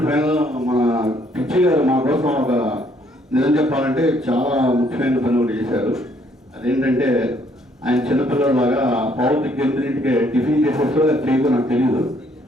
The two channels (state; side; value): normal; both; correlation 0.66